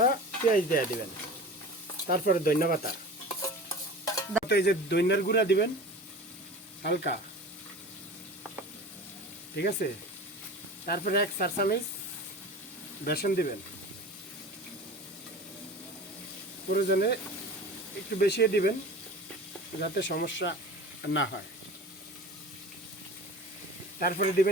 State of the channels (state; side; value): normal; both; correlation 0.36